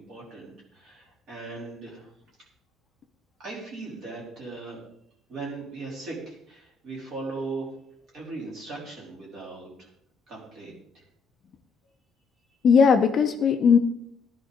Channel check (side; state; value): right; quieter; 5.1 dB